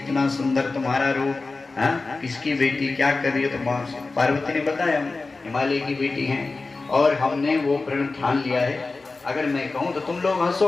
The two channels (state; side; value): quieter; right; 3.7 dB